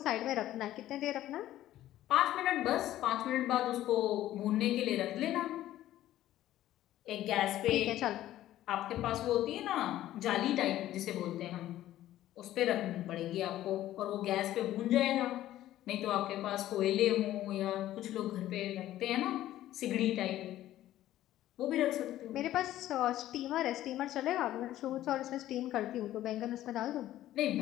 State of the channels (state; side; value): quieter; right; 13.7 dB